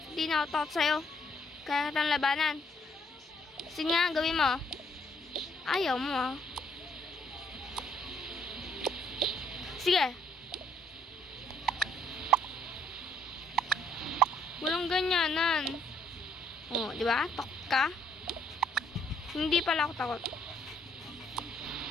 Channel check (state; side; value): normal; both; correlation 0.68